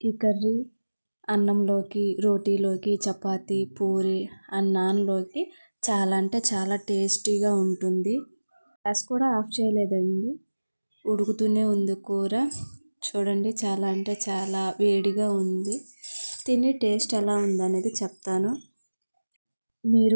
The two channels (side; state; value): both; inverted; correlation -1.00